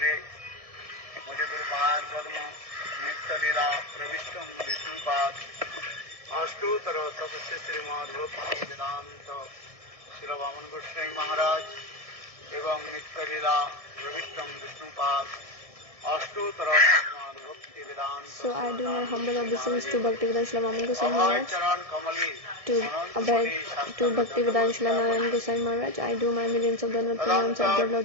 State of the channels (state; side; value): late; left; 1.6 ms